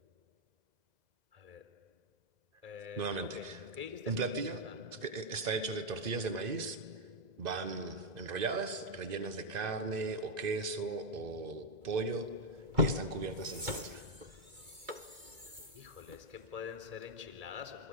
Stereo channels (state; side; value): late; left; 2.0 ms